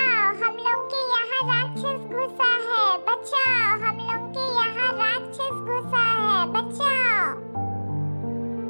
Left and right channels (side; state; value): both; inverted; correlation -1.00